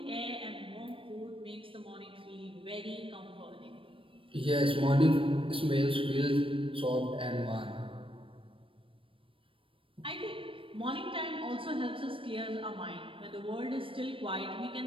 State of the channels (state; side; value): late; left; 0.25 ms